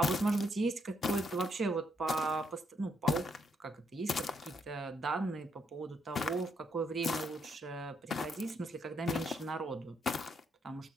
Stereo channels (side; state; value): both; normal; correlation 0.75